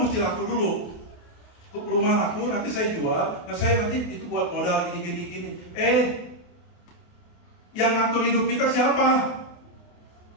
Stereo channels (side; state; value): right; late; 28 ms